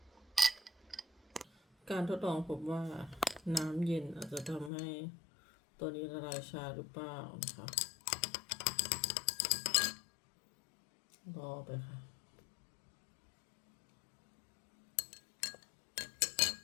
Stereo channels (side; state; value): right; drops out; at 4.7 s